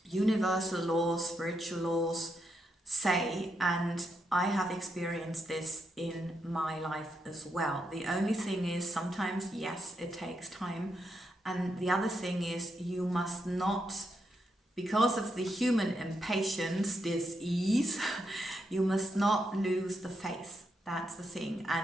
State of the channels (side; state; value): both; normal; correlation 0.81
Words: universal laws, spiritual laws say, and I have experienced this in my life as well. The only thing is, sometimes, yes, it takes time, and the other thing is, you must not, because of the human impatience, dis-ease, you must not lose the faith. That's the thing.